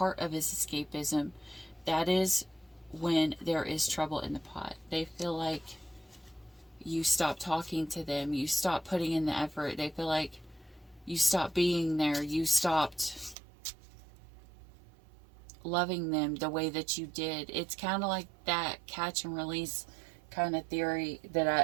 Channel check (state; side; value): drops out; left; at 13.4 s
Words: of his escapism, that is when there is trouble in the pot. They feel like you stop talking to them, you stop putting in the effort. They feel like you stopped being there, you stopped loving them the way that you did. It's kind of like that catch and release kind of theory